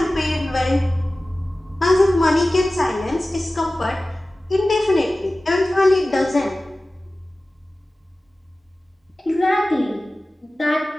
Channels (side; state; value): both; normal; correlation 0.97